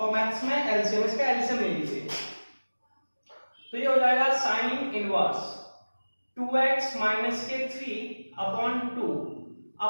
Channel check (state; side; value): inverted; both; correlation -1.00